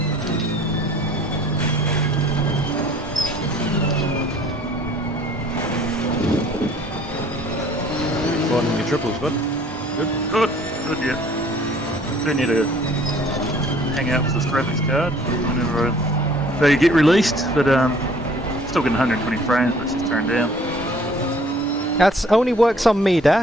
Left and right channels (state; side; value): normal; both; correlation 0.55